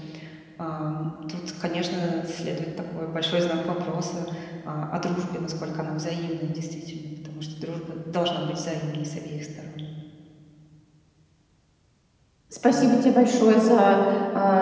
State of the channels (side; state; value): both; identical; correlation 1.00